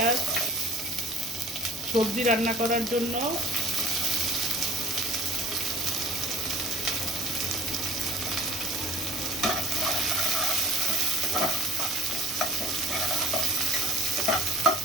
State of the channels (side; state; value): both; normal; correlation 0.49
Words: সবজি রান্না করার জন্য